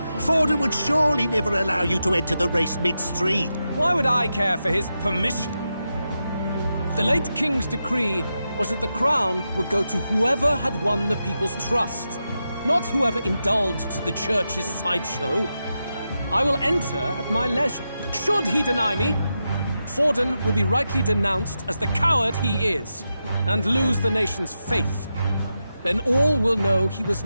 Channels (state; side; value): inverted; both; correlation -0.88